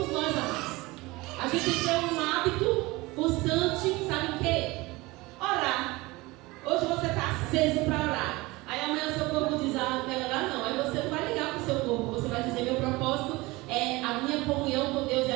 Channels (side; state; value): left; quieter; 21.9 dB